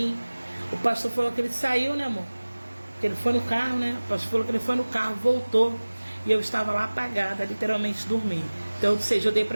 O pastor falou que ele saiu, né, amor? Que ele foi no carro, né? O pastor falou que ele foi no carro, voltou. E eu estava lá apagada, literalmente dormi. Então, ou seja, eu dei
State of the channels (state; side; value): inverted; both; correlation -1.00